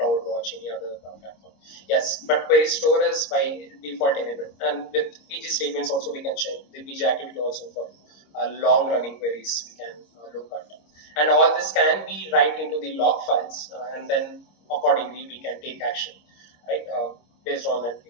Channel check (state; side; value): late; right; 26 ms